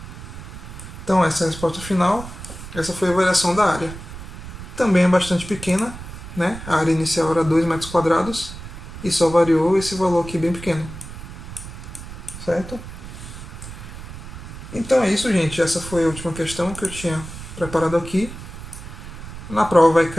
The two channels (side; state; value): right; noise; rumble, 12 dB below the sound